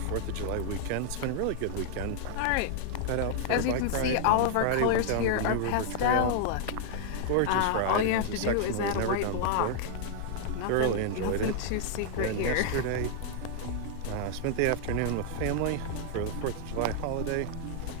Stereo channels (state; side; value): different; both; correlation 0.00